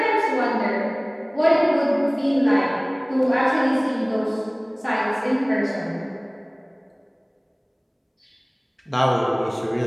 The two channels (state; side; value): identical; both; correlation 1.00